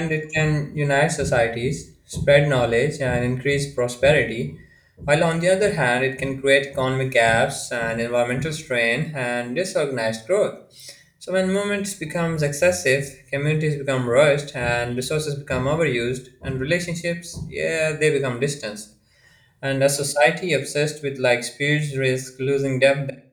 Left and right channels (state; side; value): identical; both; correlation 1.00